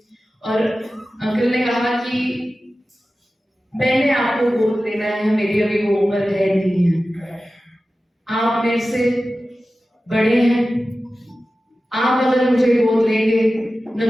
और अंकल ने कहा कि मैंने आपको गोद लेना है, मेरी अभी वो उम्र है नहीं है, आप मेरे से बड़े हैं, आप अगर मुझे गोद लेंगे,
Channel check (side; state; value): both; normal; correlation 0.95